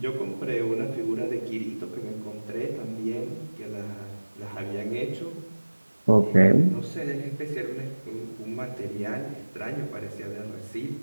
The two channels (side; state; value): both; inverted; correlation -1.00